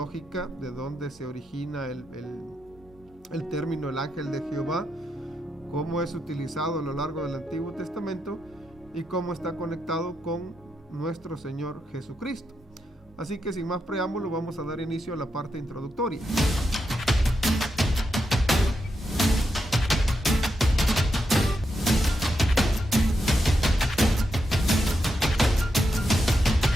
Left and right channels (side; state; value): both; normal; correlation 0.84